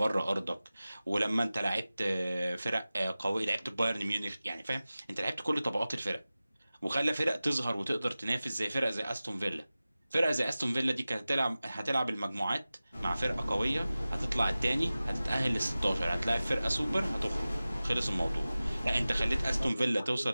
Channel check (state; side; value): inverted; both; correlation -0.97